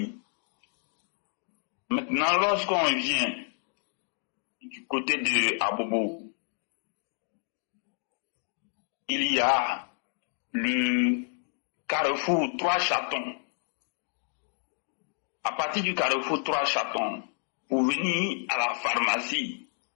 Maintenant, lorsqu'on vient du côté de Abobo, il y a le carrefour Trois Chatons. À partir du carrefour Trois Chatons, pour venir à la pharmacie,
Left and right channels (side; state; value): right; silent; 58 dB below the other